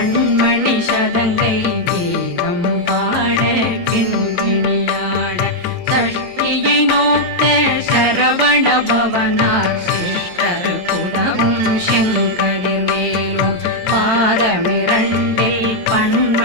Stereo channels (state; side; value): late; left; 22 ms